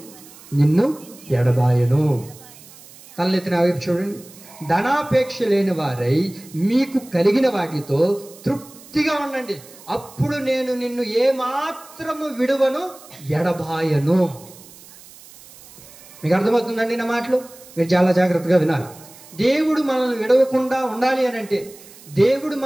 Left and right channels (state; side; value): noise; right; hiss, 21 dB below the sound